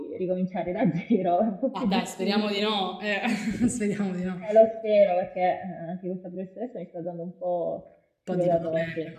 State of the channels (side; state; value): both; identical; correlation 1.00